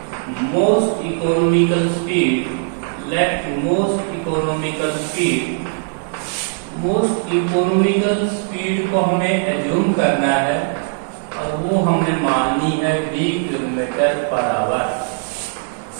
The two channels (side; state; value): left; silent; 62 dB below the other